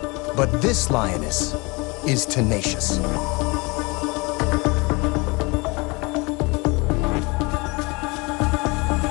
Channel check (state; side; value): quieter; right; 27.0 dB